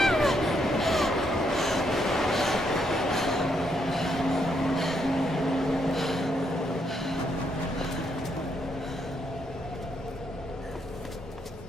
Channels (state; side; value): normal; both; correlation 0.76